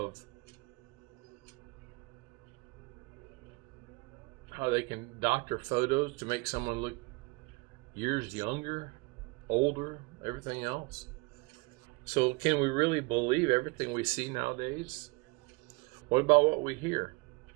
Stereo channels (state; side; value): quieter; left; 26.2 dB